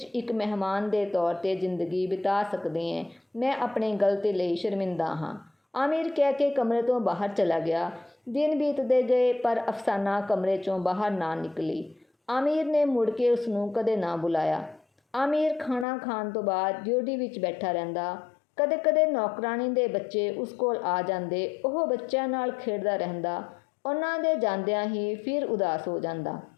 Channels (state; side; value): drops out; right; at 15.9 s